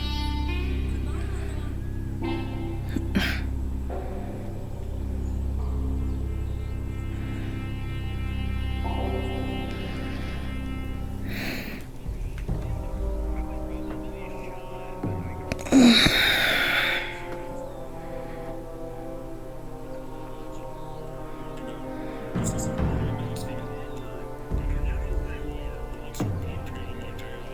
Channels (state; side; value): identical; both; correlation 1.00